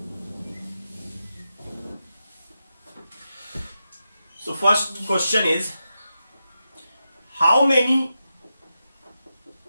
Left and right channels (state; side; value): inverted; both; correlation -0.89